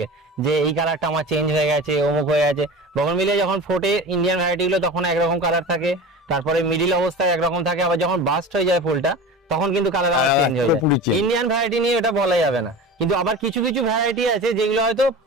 যে এই কালারটা আমার চেঞ্জ হয়ে গেছে, অমুক হয়ে গেছে। বোগেনভিলিয়া যখন ফোটে ইন্ডিয়ান ভ্যারাইটি গুলো তখন একরকম কালার থাকে, তারপরে মিডিল অবস্থায় একরকম থাকে, আবার যখন বাস্ট হয়ে যায় ফুলটা তখন কিন্তু কালার আবার চেঞ্জ হয়ে পুরোপুরি যায়। change। ইন্ডিয়ান ভ্যারাইটি নিয়ে এটা বলা যাবে না, কিন্তু আবার কিছু কিছু ভ্যারাইটি আছে যেগুলো হয়তো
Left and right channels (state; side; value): normal; both; correlation 0.33